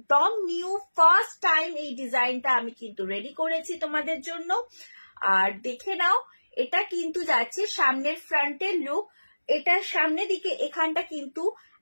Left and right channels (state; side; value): inverted; both; correlation -1.00